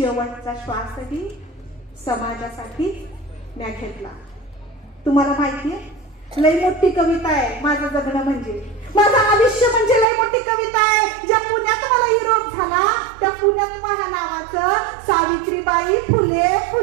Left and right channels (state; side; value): drops out; left; at 10.1 s